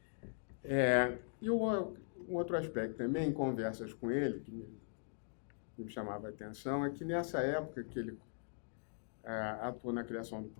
E um outro aspecto também, em conversas com ele, me chamava a atenção é que nessa época que ele atuou na criação do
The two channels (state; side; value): silent; right; digital silence